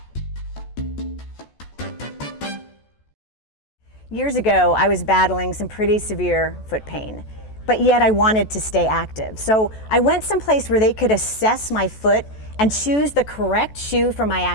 Years ago, I was battling some pretty severe foot pain, but yet I wanted to stay active. So I went someplace where they could assess my foot and choose the correct shoe for my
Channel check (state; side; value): late; right; 14 ms